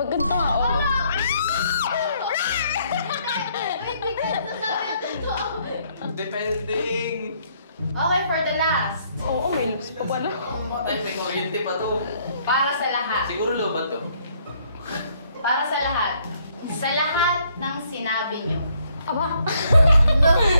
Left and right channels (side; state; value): both; inverted; correlation -0.68